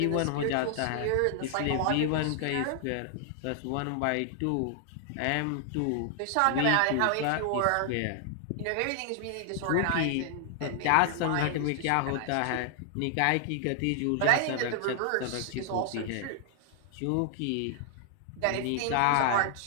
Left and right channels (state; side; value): different; both; correlation 0.00